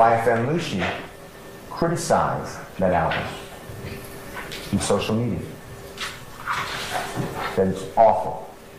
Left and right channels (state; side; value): identical; both; correlation 1.00